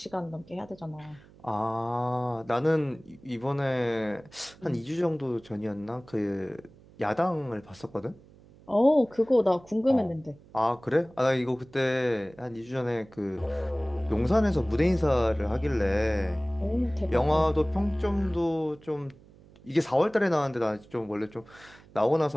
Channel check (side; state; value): right; noise; hum, 24 dB below the sound